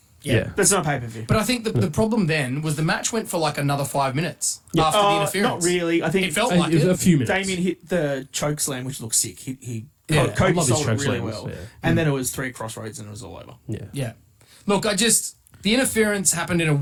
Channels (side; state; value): both; identical; correlation 1.00